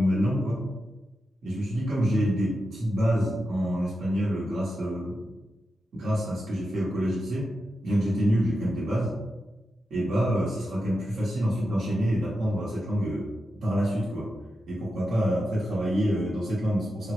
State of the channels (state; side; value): normal; both; correlation 0.89